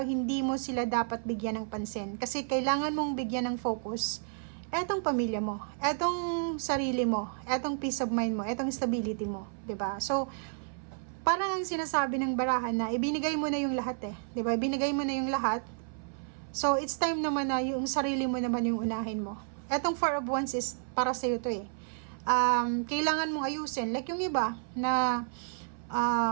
hindi mo sila dapat bigyan ng pansin. Kasi kailangan mong bigyan ng focus etong pamilya mo, etong sarili mo, etong peace of mind mo, etong stability mo. 'Di ba? So, parang ang sinasabi ng barahan na ibinigay mo na yung lahat eh. 'Di ba? Ibinigay mo na yung lahat. So, it's time naman na yung sarili mo naman yung unahin mo. Etong 4 of Wands is para sa'yo to eh. Kailangan mong ayusin. Like yung iba na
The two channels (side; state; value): left; silent; 57 dB below the other